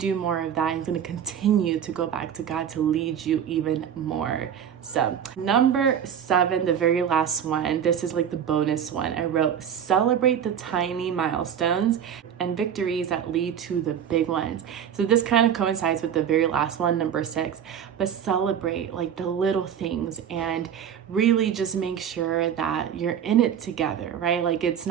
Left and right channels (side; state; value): left; quieter; 8.7 dB